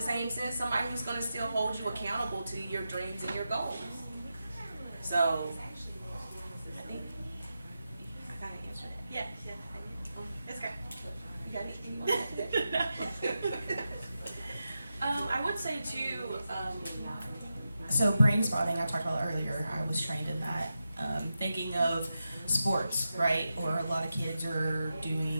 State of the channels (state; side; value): inverted; both; correlation -0.89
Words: same sense, somebody who's going to still hold you accountable to your dreams and your goals. So, I think I kind of answered that. Yeah. It's okay. You got anything you want to add to that? I would say too, So brain spotting, I talked about earlier, I was trained in that. Thinking of sports, right? Or a lot of kids are